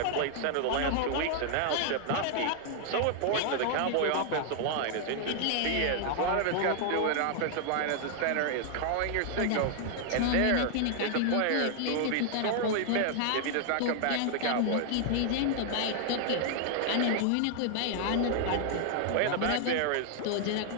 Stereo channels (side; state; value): both; different; correlation 0.00